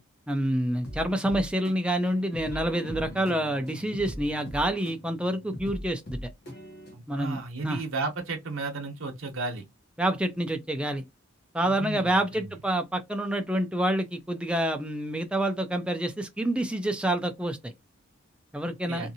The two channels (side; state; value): both; normal; correlation 0.75